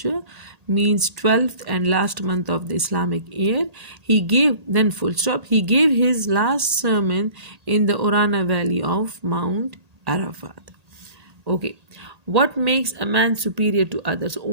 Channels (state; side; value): late; left; 1.8 ms